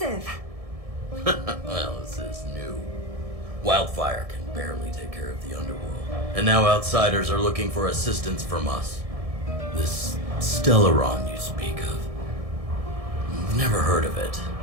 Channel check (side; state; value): left; late; 1.6 ms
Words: Well, this is new. Wildfire can barely take care of the underworld. And now outsiders are looking for assistance from us. This Stellaron you speak of. I've never heard of it.